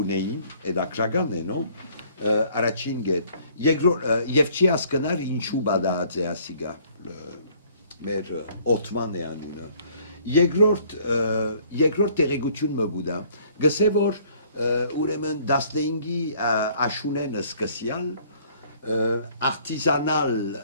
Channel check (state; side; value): inverted; both; correlation -0.59